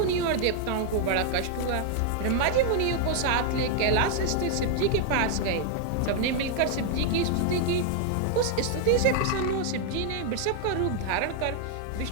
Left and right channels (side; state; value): both; different; correlation 0.00